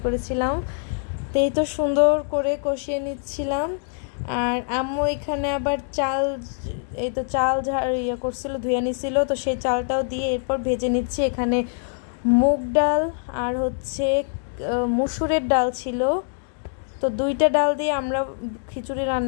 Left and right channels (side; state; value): right; silent; digital silence